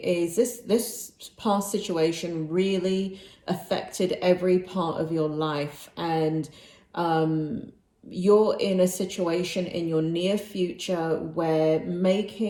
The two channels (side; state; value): both; identical; correlation 1.00